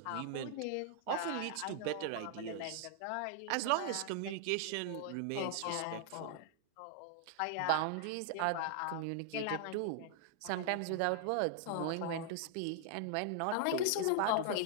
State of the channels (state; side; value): different; both; correlation -0.01